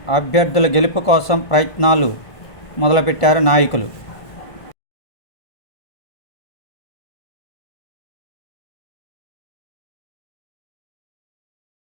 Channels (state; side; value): late; right; 1.5 ms